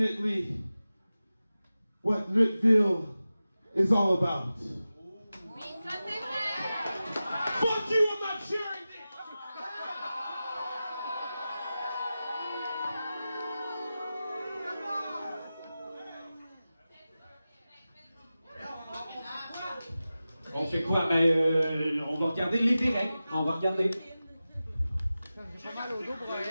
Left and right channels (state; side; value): inverted; both; correlation -0.94